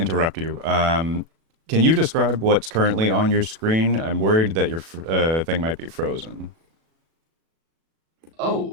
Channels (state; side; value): late; left; 37 ms